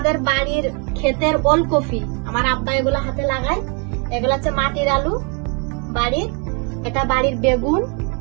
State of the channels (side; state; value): left; quieter; 35.4 dB